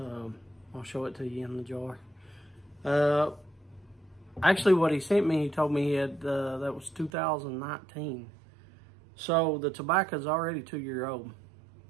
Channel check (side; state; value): left; drops out; at 7.1 s